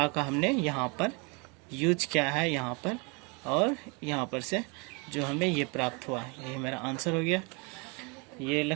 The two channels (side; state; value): left; quieter; 31.3 dB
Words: का हमने यहाँ पर यूज किया है यहाँ पर, और यहाँ पर से जो हमें ये प्राप्त हुआ, यही मेरा आंसर हो गया। ये